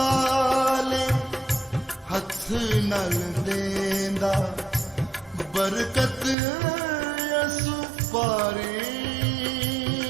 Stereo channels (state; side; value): drops out; left; at 6.4 s